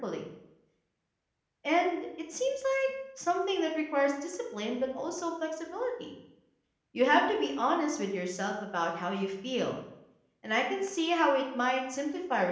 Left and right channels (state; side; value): identical; both; correlation 1.00